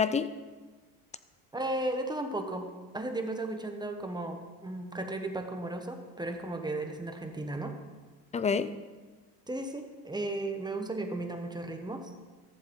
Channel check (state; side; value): normal; both; correlation 0.51